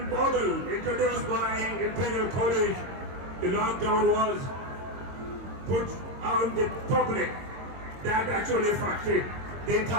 model introduced by Imperial College, the lockdown was put on the public that actually affected the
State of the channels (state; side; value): late; left; 22 ms